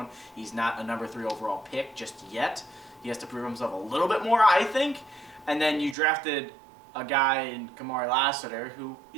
He's not a number 3 overall pick just yet. He has to prove himself a little bit more, I think. And then you drafted a guy in Kamari Lassiter, who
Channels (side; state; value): left; drops out; at 6.0 s